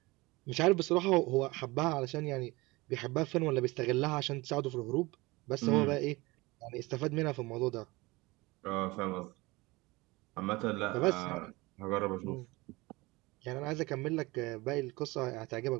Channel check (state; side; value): quieter; left; 22.4 dB